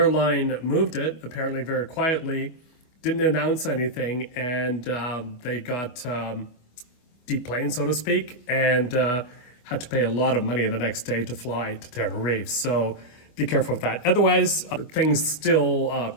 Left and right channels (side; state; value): right; late; 25 ms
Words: moved it, apparently very quietly, didn't announce anything, and they got deplaned, so to speak, and had to pay a lot of money the next day to fly to Tenerife. So be careful with that. Otherwise, things still